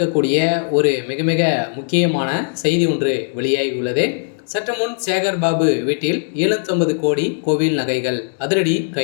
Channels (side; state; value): right; silent; digital silence